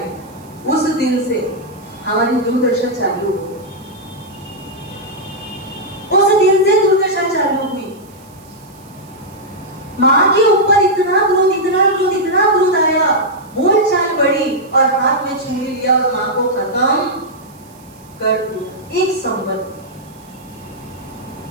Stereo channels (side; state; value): right; noise; hiss, 27 dB below the sound